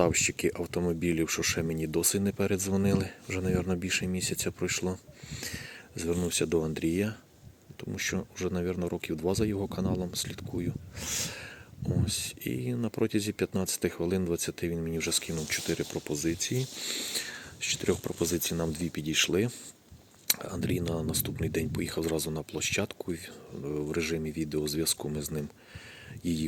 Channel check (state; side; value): identical; both; correlation 1.00